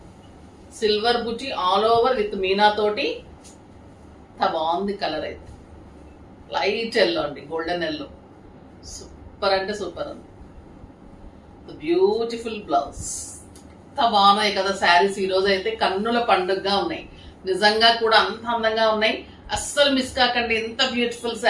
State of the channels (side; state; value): both; identical; correlation 1.00